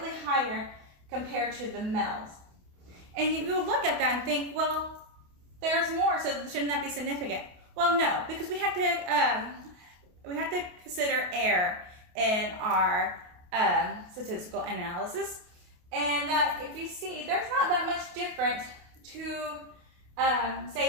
higher compared to the males. And you would look at that and think, well, there's more, so shouldn't that be significant? Well, no, because we have to consider error in our statistical analysis. And if you see, there's not that much difference to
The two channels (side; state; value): left; late; 28 ms